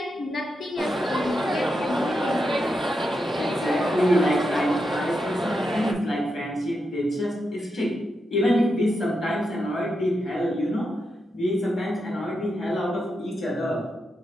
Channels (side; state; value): both; normal; correlation 0.86